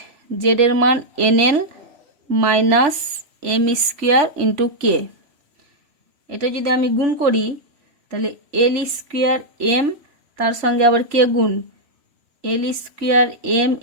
Z এর মান N L minus M square into K. এটা যদি আমি গুণ করি তাহলে এল স্কোয়ার এম তার সঙ্গে আবার কে গুণ L square M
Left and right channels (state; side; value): late; left; 3.0 ms